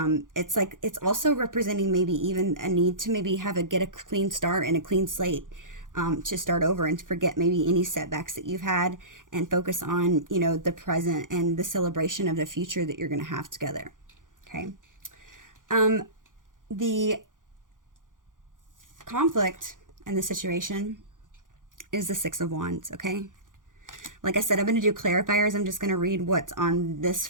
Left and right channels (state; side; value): late; left; 0.88 ms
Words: also representing maybe even a need to maybe get a clean start and a clean slate. To start over and to forget maybe any setbacks that you've had and focus on, you know, the present and the celebration of the future that you're going to have together. Okay. The conflict in the situation is the Six of Wands. Okay. Like I said, I'm going to do clarifiers. I'm just going to read what's on this